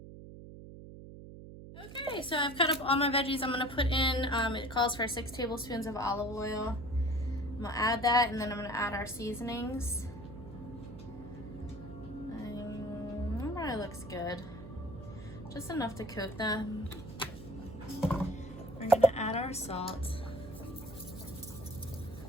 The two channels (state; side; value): noise; right; hum, 13 dB below the sound